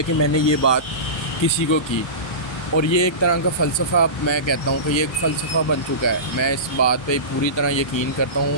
میں نے یہ بات کسی کو کی، اور یہ ایک طرح کا فلسفہ، میں کہتا ہوں کہ یہ ایک فلسفہ بن چکا ہے۔ میں اس بات پہ پوری طرح یقین کرتا ہوں،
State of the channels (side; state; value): right; late; 1.3 ms